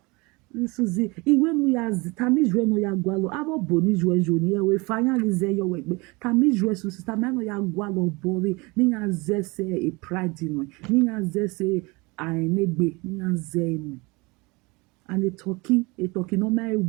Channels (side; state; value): left; quieter; 25.7 dB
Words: Suzy when we are tamiz when we are gwalo abo boni joni we finally say your work tamiz Suzy tamano ya gwalo bori ni ya zese e pride no ni ya zese ainegbe ni ya zenu and a turkey no my